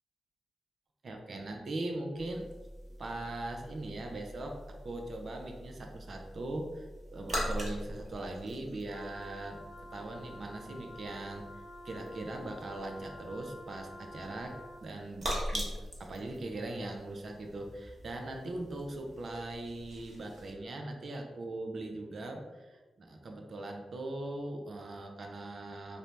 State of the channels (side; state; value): both; normal; correlation 0.89